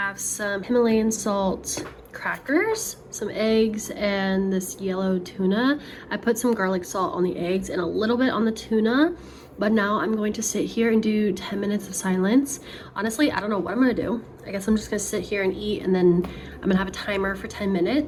some Himalayan salt crackers, some eggs, and this yellow tuna. I put some garlic salt on the eggs and a little bit on the tuna. But now I'm going to sit here and do 10 minutes of silence. Honestly, I don't know what I'm gonna do. I guess I'm just gonna sit here and eat, and then I'm gonna have a timer for 10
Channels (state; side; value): identical; both; correlation 1.00